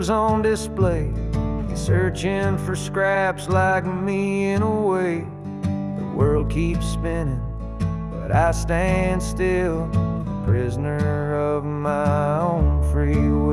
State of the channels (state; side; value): identical; both; correlation 1.00